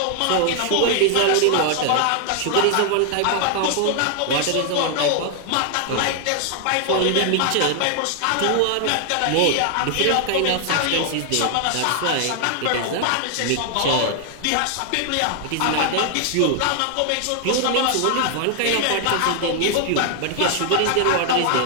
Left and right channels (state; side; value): different; both; correlation 0.00